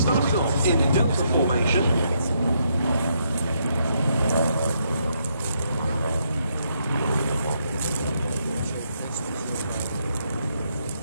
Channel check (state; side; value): inverted; both; correlation -0.76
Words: off in Delta formation.